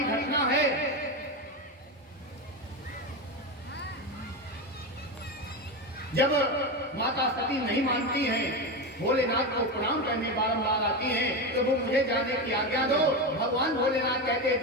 है। जब माता सती नहीं मानती हैं, भोलेनाथ को प्रणाम करने बारंबार आती हैं, तो वो मुझे जाने की आज्ञा दो। भगवान भोलेनाथ कहते हैं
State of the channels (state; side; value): normal; both; correlation 0.17